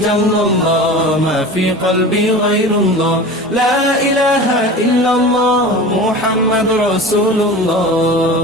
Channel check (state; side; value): normal; both; correlation 0.34